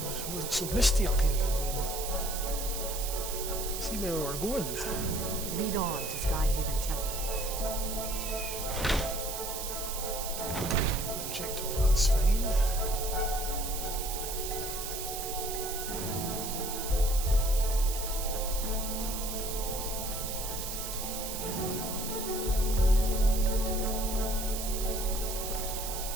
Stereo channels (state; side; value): noise; right; hiss, 5 dB below the sound